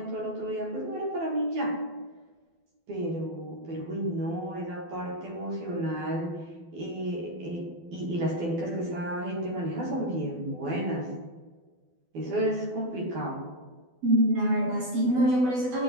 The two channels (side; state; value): left; late; 12 ms